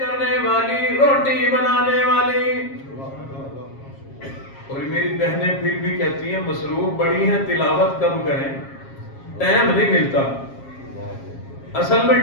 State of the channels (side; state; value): right; late; 7.4 ms